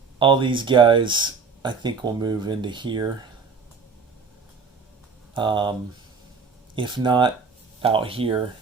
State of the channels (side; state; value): left; quieter; 5.0 dB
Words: these guys, I think, will move into here. If not out here,